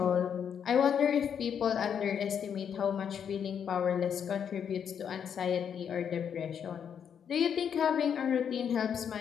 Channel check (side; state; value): right; quieter; 8.0 dB